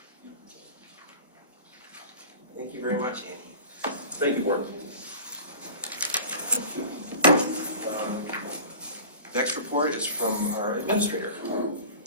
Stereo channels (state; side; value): inverted; both; correlation -0.39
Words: Thank you very much, Andy. Thank you, board. Next report is from our administrator.